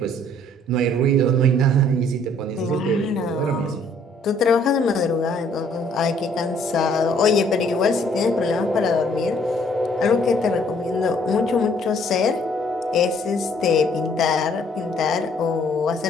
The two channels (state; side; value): normal; both; correlation 0.62